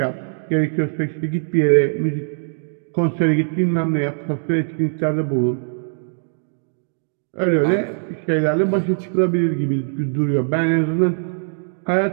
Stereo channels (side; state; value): left; silent; digital silence